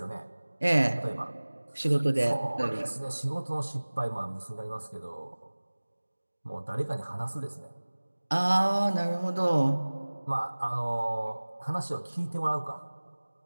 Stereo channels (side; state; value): both; inverted; correlation -1.00